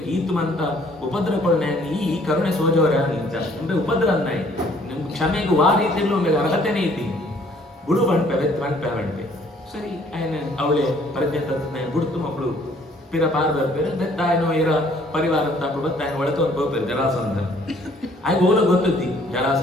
ಈತು ಮಂತ ಉಪದ್ರವಗಳನ್ನ ಈ ಕರುಣೆ ಸೋಜವರ ಇಂಚ ಅಂದ್ರೆ ಉಪದ್ರ ಅನ್ನಾಯಿ ನಿಮ್ ಕ್ಷಮೆಗೆ ವಾ ರೀತಿಯಲ್ಲೂ ಒಮ್ಮೆ ಅರ್ಹತೆನೇ ಇದ್ದೀನಿ ಬುಡು ಬಂಡ್ಪೆ ಸರಿ ಆಯ್ನ ಅವಳೆ ಪ್ರಜ್ಞೆ ತತ್ನ ಬುಡ್ತು ಮಕ್ಕಳು ಪಿರ ಪಾರ್ ಬರ್ಪೇರು ಬೆತ್ತಾಯನೋ ಇರ ಪರಿವಾರ ತಪ್ಪು ಬತ್ತಾಯನ ಒಳತು ಒಂದು ಹೋಗ್ಪೇರು ಜರಾಸಂಧ ಆಗ ಓಲ ಗೊತ್ತುದ್ದಿ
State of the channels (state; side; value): normal; both; correlation 0.60